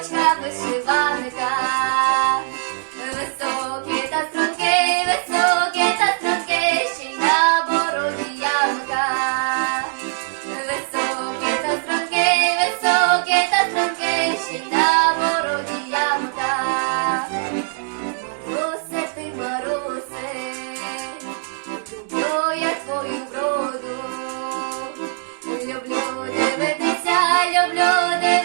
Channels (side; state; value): left; silent; digital silence